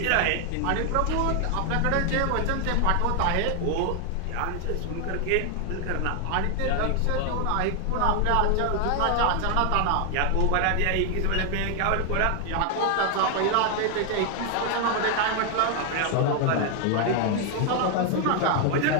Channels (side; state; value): both; different; correlation 0.00